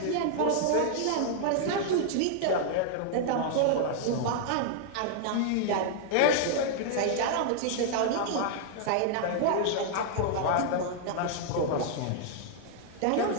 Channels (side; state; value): both; different; correlation -0.01